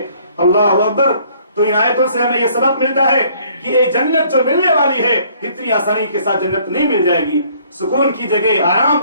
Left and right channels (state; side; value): inverted; both; correlation -0.60